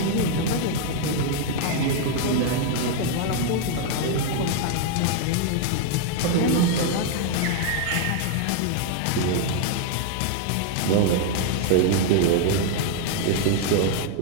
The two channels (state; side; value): different; both; correlation 0.00